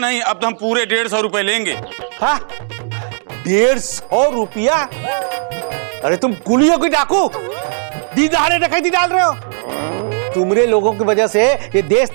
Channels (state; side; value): silent; left; 69 dB below the other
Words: अब तो हम पूरे 150 रुपए लेंगे। हाँ 150 रुपया? अरे तुम कुलियों की डाकू, दीदारे डकैती डाल रहे हो। तुमरे लोगों की वजह से ये देश